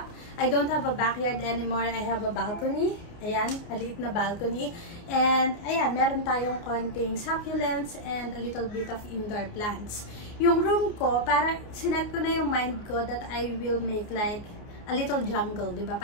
I don't have a backyard anymore. I have a balcony. Ayan, maliit na balcony. And ayan, meron tayong konting succulents and a little bit of indoor plants. Yung room ko, parang sinet ko na yung mind ko that I will make like a little jungle, diba?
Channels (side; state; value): right; late; 29 ms